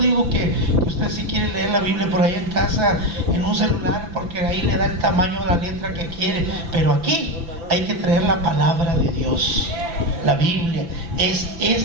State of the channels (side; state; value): left; late; 5.9 ms